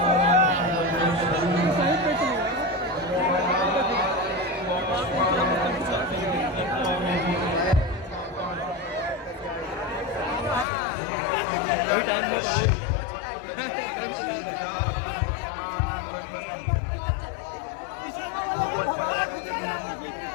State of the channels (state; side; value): drops out; right; at 10.7 s